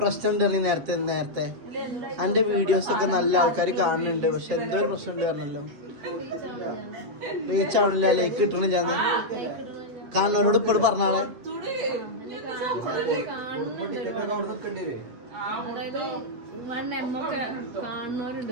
ഉണ്ട്. നേരത്തെ എന്റെ വീഡിയോസ് ഒക്കെ നല്ല ആൾക്കാർ കാണുന്നുണ്ട്, പക്ഷെ എന്തോ ഒരു പ്രശ്നം ഉണ്ട് പറഞ്ഞല്ലോ. റീച്ച് ആവണില്ല, ലൈക്ക് കിട്ടണില്ല. കാണുന്നവരോട് ഇപ്പോഴും പറഞ്ഞാളെ. അതായത് 1M ഒക്കെ കാണുന്നവരുണ്ട്,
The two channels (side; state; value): left; late; 8.1 ms